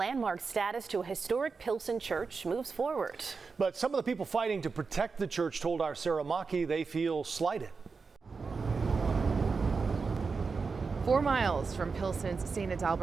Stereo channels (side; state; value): left; quieter; 4.8 dB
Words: status to a historic Pilsen church moves forward. But some of the people fighting to protect the church told our Sarah Maki they feel slighted. 4 miles from Pilsen's St.